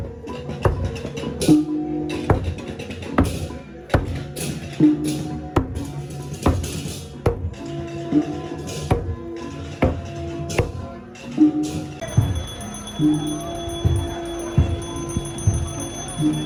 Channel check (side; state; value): both; identical; correlation 1.00